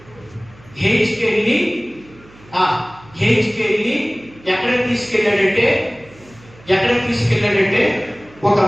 హెచ్కేల్ని ఎక్కడికి తీసుకెళ్ళాడంటే ఒక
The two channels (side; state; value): right; noise; hum, 25 dB below the sound